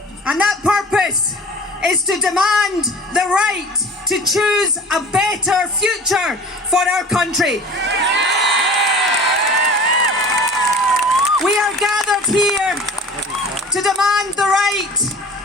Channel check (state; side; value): normal; both; correlation 0.41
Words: And that purpose is to demand the right to choose a better future for our country. We are gathered here to demand the right